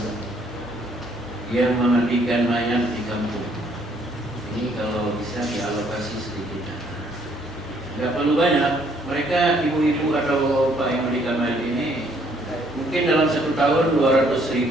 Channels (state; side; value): normal; both; correlation 0.66